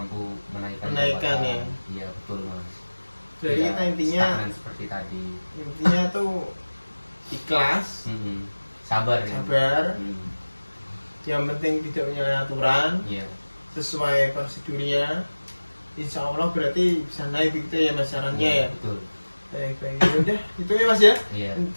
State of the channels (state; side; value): inverted; both; correlation -1.00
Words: menaikkan ya. Iya betul Mas. Jadi ya, intinya seperti tadi intinya tuh ikhlas, sabar. Yang penting tidak menyalahi aturan, sesuai prosedurnya. Insya Allah berarti bisa naik gitu ya Mas sarannya ya. Betul. Baik. Udah itu ya Mas ya. Iya.